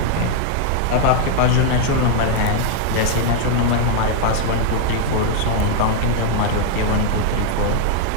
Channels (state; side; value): different; both; correlation 0.00